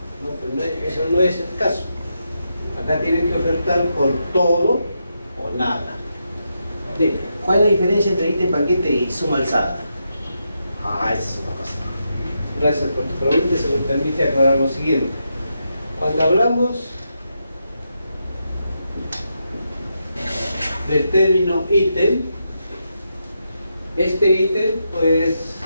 No, pero eso no es el caso. Acá tienen que ofertar por todo o nada. ¿Cuál es la diferencia entre ítem paquete y suma alzada? Esa es otra cosa. Gracias por tu pregunta, se me permite aclarar lo siguiente. Cuando hablamos del término ítem, este ítem, pues,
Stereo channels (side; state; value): both; inverted; correlation -0.84